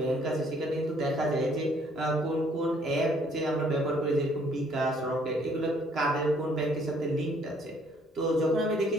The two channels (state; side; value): normal; both; correlation 0.63